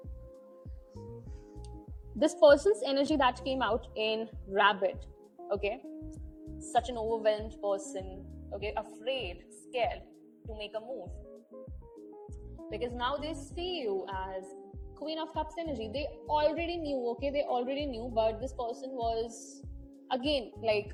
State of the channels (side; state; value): both; identical; correlation 1.00